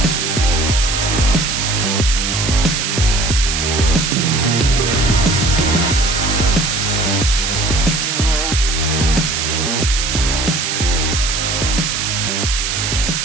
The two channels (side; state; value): right; noise; hiss, 1 dB below the sound